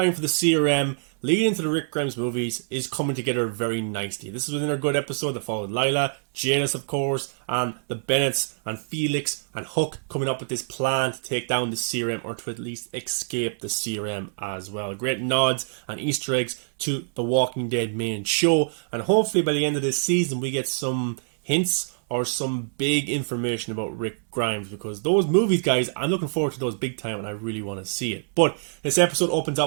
for the CRM leading into the Rick Grimes movies is coming together very nicely. This is another good episode that followed Lila, Janice, of course, and the Bennetts and Felix and Hook coming up with this plan to take down the CRM, or to at least escape the CRM as well. Great nods and Easter eggs to the Walking Dead main show, and hopefully by the end of this season we get some hints or some big information about Rick Grimes, because those movies, guys, I'm looking forward to those big time and I really want to see it. But this episode opens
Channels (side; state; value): left; silent; digital silence